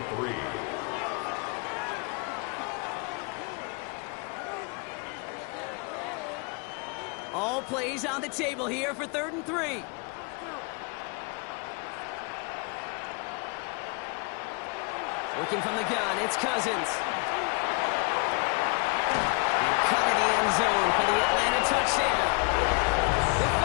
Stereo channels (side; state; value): right; quieter; 32.4 dB